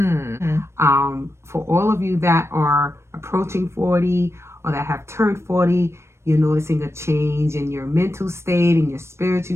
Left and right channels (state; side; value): late; left; 0.13 ms